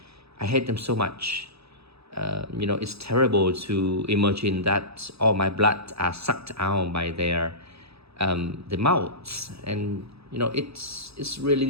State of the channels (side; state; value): left; late; 0.78 ms